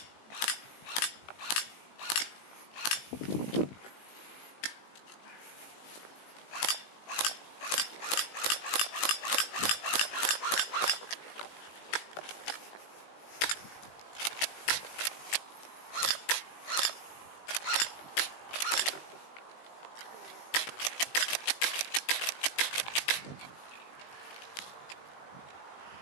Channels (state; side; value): late; right; 18 ms